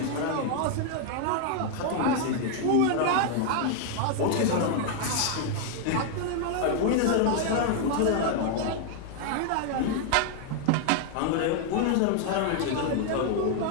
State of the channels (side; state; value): both; different; correlation 0.00